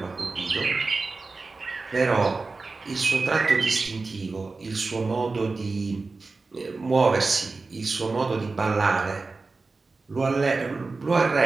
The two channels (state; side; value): quieter; left; 3.9 dB